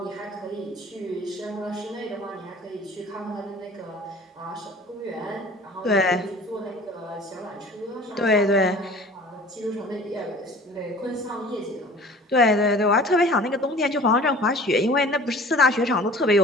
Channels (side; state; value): both; normal; correlation 0.45